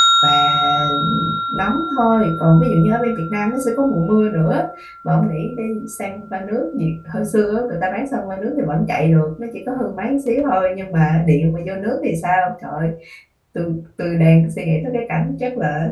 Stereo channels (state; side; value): identical; both; correlation 1.00